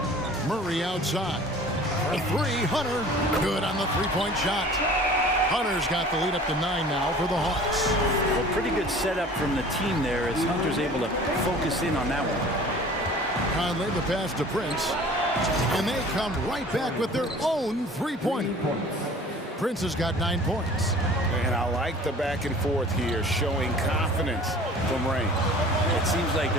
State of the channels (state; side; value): normal; both; correlation 0.46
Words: Murray outside. For 3, Hunter. Good on the three-point shot. Hunter's got the lead up to 9 now for the Hawks. Well, pretty good setup from the team there as Hunter's able to focus in on that one. Conley, the pass to Prince. And they come right back with their own three-pointer. Prince has got 9 points. And I like the back and forth here, showing confidence from Rain. It seems like